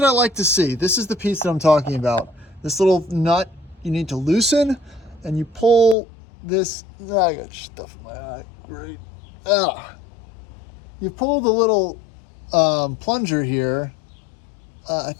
I like to see, this is the piece that I'm talking about. This little nut you need to loosen, and you pull this, I got stuff in my eye, great. You pull the little plunger here. I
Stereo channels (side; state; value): right; drops out; at 6.0 s